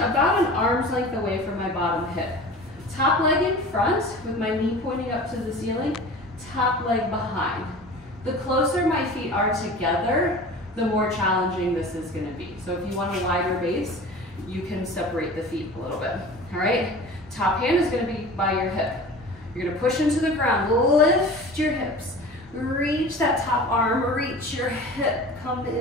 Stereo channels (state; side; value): normal; both; correlation 0.38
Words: an arm's length away from my bottom hip. Top leg in front with my knee pointing up to the ceiling, top leg behind. The closer my feet are together, the more challenging this is gonna be. So if you want a wider base, you can separate the feet a little bit, all right? Top hand is gonna be by your hip. You're gonna push into the ground, lift your hips, reach that top arm, reach your hip, come